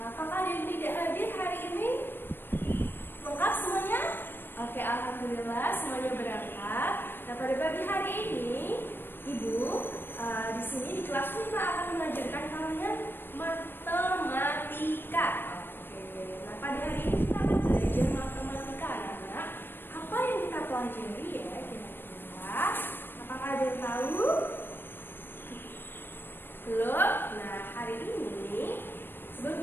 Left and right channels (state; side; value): late; right; 0.098 ms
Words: Apakah ada yang tidak hadir hari ini? Lengkap semuanya? Oke, alhamdulillah semuanya berangkat. Nah, pada pagi hari ini Ibu di sini di kelas 5 akan mengajarkan kalian matematika. Oke, nah pada hari ini kita akan belajar matematika anak-anak. Apa yang kita pelajari ya kira-kira? Apakah ada yang tahu? Belum? Nah, hari ini